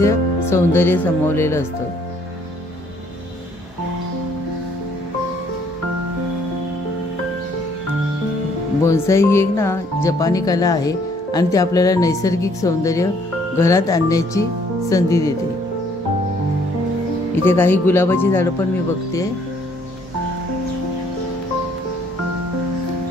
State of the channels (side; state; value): both; normal; correlation 0.64